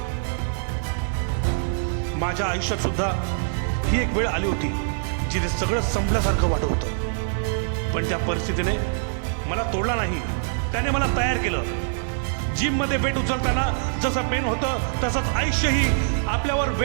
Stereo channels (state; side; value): silent; left; digital silence